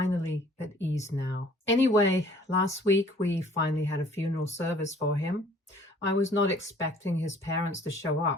at ease now. Anyway, last week we finally had a funeral service for him. I was not expecting his parents to show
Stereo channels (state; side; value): normal; both; correlation 0.55